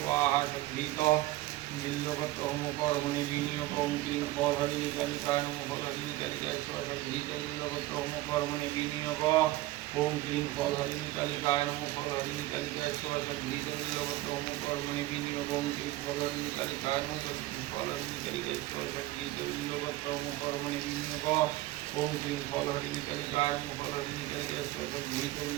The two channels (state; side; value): quieter; left; 17.3 dB